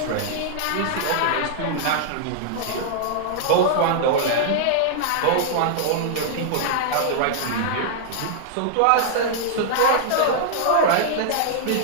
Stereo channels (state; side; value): different; both; correlation -0.01